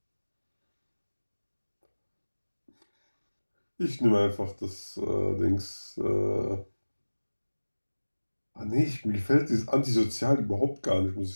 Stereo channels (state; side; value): inverted; both; correlation -1.00